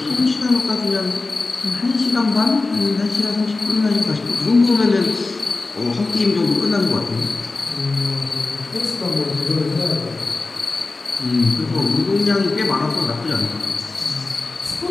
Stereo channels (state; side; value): quieter; right; 3.5 dB